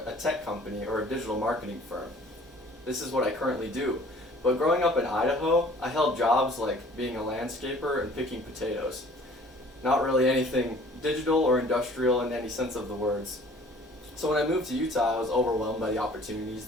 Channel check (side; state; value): both; normal; correlation 0.52